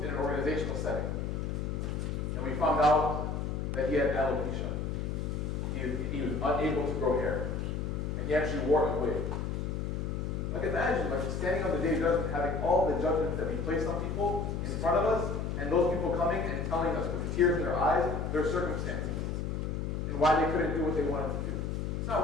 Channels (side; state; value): left; noise; hum, 2 dB below the sound